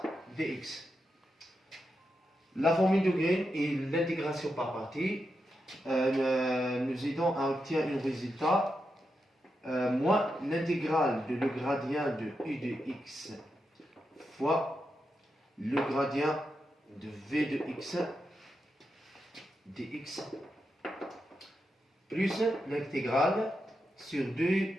dx. La formule de Green et l'intégration par partie nous aidons à obtenir un résultat moins l'intégrale de le gradient de u de x fois le gradient de v de x dx plus l'intégrale sur 2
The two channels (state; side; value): normal; both; correlation 0.86